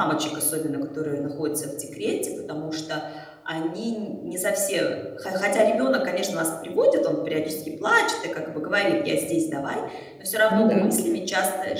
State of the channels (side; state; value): both; identical; correlation 1.00